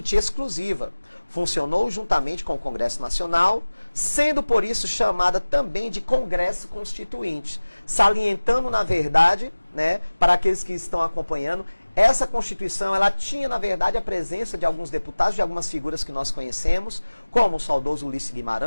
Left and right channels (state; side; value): inverted; both; correlation -1.00